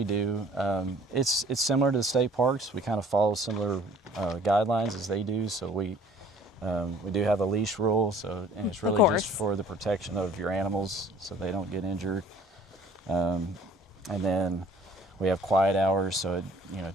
do. It's similar to the state parks. We kind of follow similar guidelines as they do. So we do have a leash rule, and it's really just for the protection of your animals so they don't get injured. And then we have quiet hours, so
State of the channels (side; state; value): both; normal; correlation 0.53